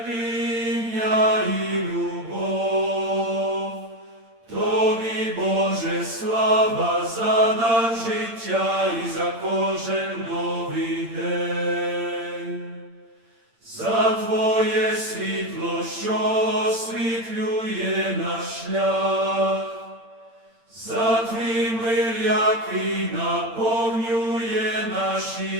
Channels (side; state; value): left; late; 8.8 ms